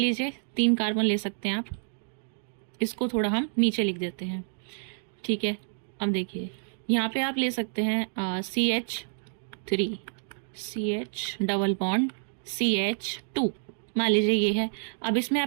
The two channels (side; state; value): left; silent; digital silence